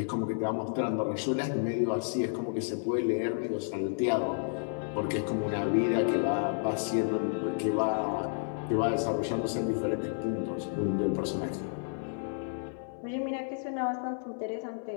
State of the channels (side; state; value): right; silent; 57 dB below the other